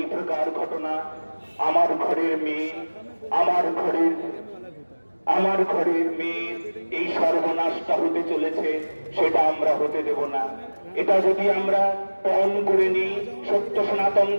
প্রকার ঘটনা আমার ঘরের মেয়ে, আমার ঘরের মেয়ে এই সর্বনাশটা হতে চলেছে, সেটা আমরা হতে দেব না। এটা যদি আমরা পণ করে নিই, সত্য সনাতন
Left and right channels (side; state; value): both; inverted; correlation -1.00